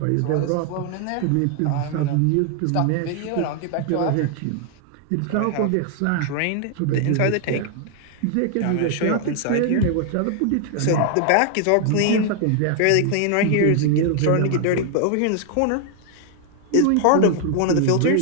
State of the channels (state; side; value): different; both; correlation 0.00